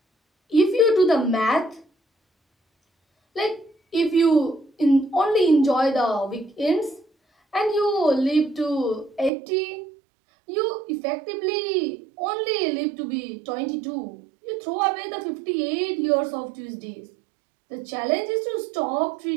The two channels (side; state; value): left; drops out; at 9.3 s